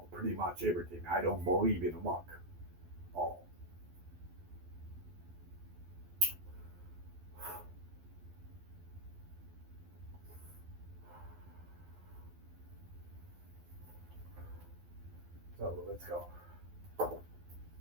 Pretty much everything. I don't believe in luck. So let's go.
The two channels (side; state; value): left; late; 12 ms